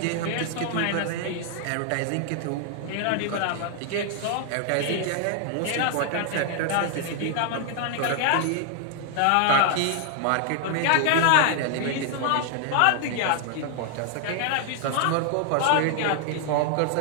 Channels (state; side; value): different; both; correlation 0.00